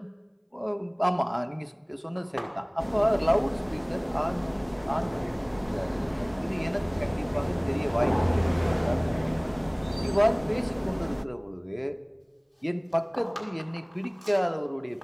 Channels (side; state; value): both; identical; correlation 1.00